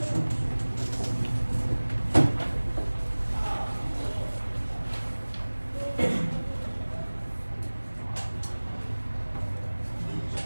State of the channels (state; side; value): inverted; both; correlation -1.00